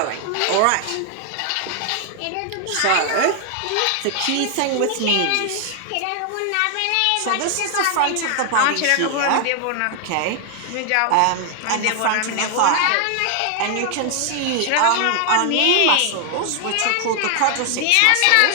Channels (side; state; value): both; different; correlation 0.00